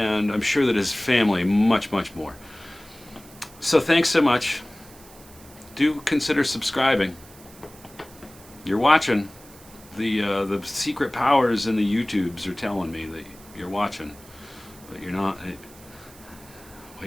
I'm sure that his family, much more. So thanks so much. Do consider subscribing. You're watching. The secret powers in the YouTubes are telling me that you're watching, but you're not.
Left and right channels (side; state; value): right; noise; hiss, 22 dB below the sound